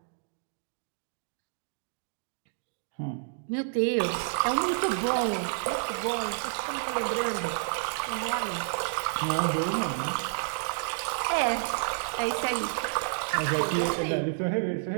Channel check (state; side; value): silent; left; digital silence